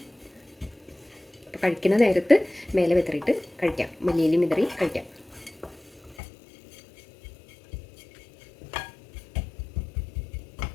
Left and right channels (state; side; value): drops out; right; at 6.2 s